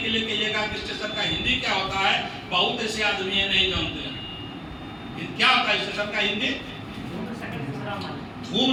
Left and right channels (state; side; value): identical; both; correlation 1.00